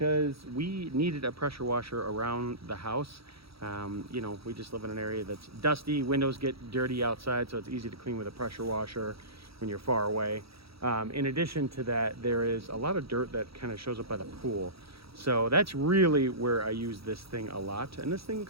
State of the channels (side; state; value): left; late; 0.76 ms